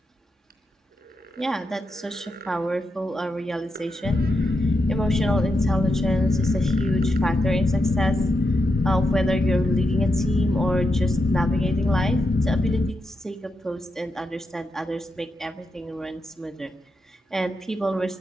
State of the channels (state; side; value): normal; both; correlation 0.85